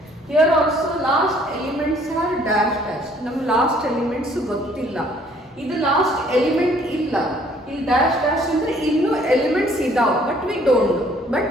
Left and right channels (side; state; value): both; normal; correlation 0.60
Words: Here also last elements are dash dash. Nam last elements gottilla. Idu last element illa. Il dash dash andre innu elements idav but we don't